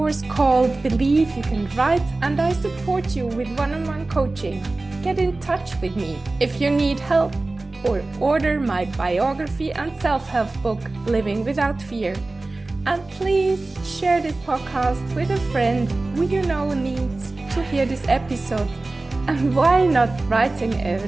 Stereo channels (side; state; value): left; quieter; 3.1 dB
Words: called Believe You Can Write, and I support you with one-on-one coaching. Get in touch with me if you need help, or order my biography and self-help book, Living Without Fear. And please share this podcast with a friend who you know needs to hear this episode. And why not writing a